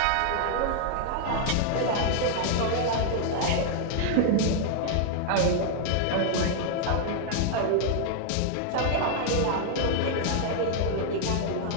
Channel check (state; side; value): different; both; correlation 0.00